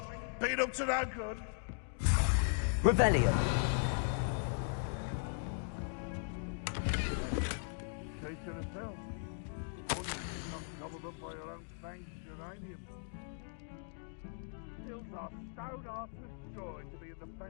we? Been up to no good? Revelio. Now a teacher herself. Gobbled up by your own fanged uranium. Hills are stone hard to destroy to be in the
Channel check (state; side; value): silent; right; digital silence